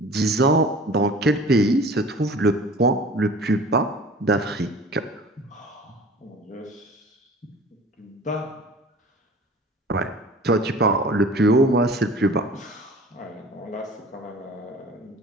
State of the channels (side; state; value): both; normal; correlation 0.43